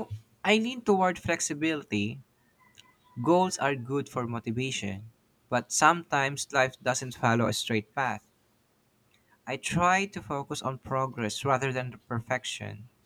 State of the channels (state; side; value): identical; both; correlation 1.00